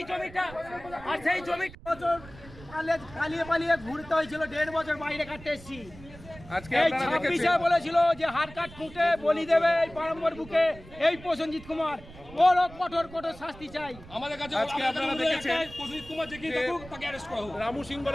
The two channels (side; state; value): right; noise; rumble, 18 dB below the sound